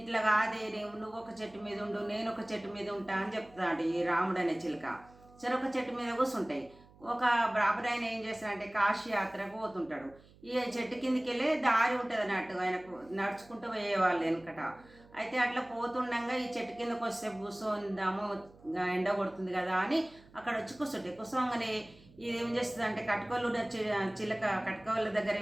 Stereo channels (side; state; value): right; noise; hum, 25 dB below the sound